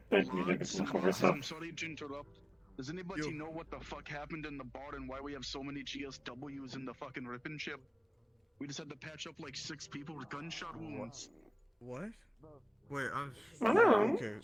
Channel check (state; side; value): identical; both; correlation 1.00